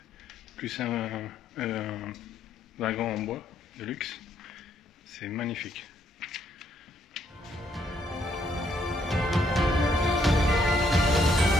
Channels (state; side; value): normal; both; correlation 0.71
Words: plus un wagon en bois de luxe. C'est magnifique.